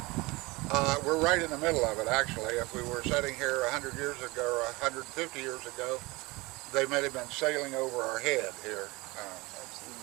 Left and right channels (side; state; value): left; quieter; 23.4 dB